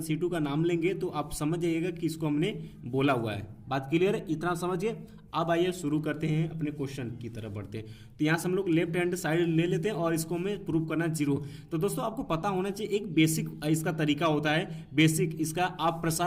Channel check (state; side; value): identical; both; correlation 1.00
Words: C2 का नाम लेंगे तो आप समझ जाइएगा कि इसको हमने बोला हुआ है। बात क्लियर है, इतना समझिए। अब आइए शुरू करते हैं, अपने क्वेश्चन की तरफ बढ़ते हैं। तो यहाँ से हम लोग लेफ्ट हैंड साइड ले लेते हैं और इसको हमें प्रूव करना 0। तो दोस्तों आपको पता होना चाहिए एक बेसिक इसका तरीका होता है, बेसिक इसका आप